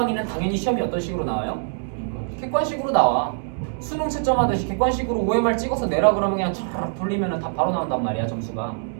당연히 시험이 어떤 식으로 나와요? 객관식으로 나와. 수능 채점하듯이 객관식으로 OMR 찍어서 내라 그러면 그냥 촤르륵 돌리면 다 바로 나온단 말이야, 점수가.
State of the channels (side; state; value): left; silent; digital silence